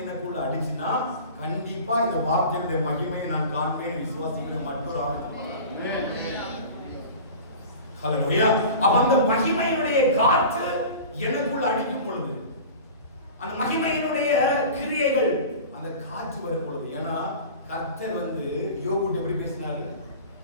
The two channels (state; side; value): inverted; both; correlation -0.37